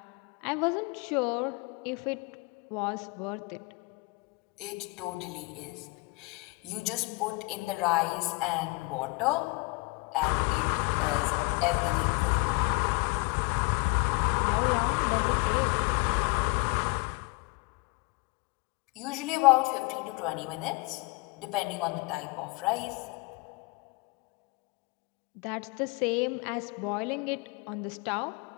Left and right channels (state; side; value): quieter; right; 26.9 dB